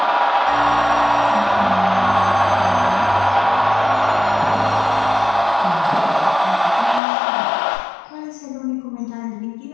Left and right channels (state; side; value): drops out; right; at 7.0 s